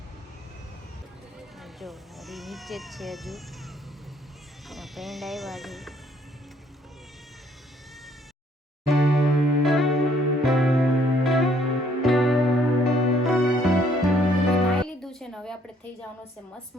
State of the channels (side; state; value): both; normal; correlation 0.64